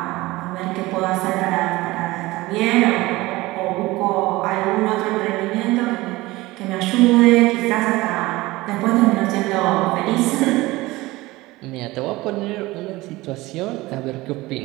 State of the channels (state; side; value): quieter; left; 19.9 dB